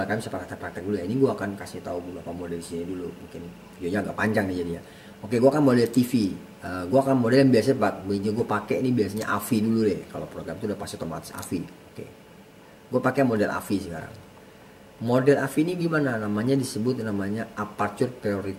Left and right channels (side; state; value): both; identical; correlation 1.00